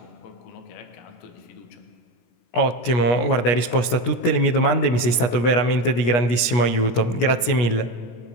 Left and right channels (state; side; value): late; right; 17 ms